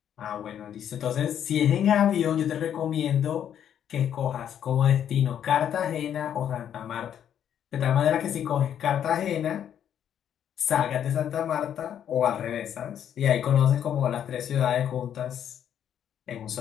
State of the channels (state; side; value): quieter; right; 9.5 dB